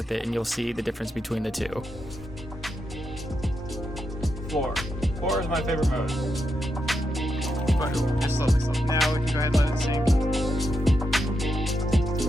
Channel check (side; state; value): both; normal; correlation 0.84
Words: it, and you'll see the difference between the two. Floor. Floor is my favorite mode. But just slowly. Now we can go ahead and let it sink.